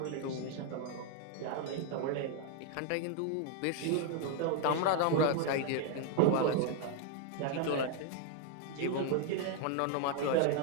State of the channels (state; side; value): different; both; correlation 0.00